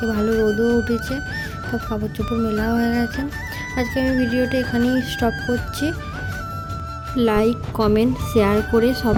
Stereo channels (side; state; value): both; identical; correlation 1.00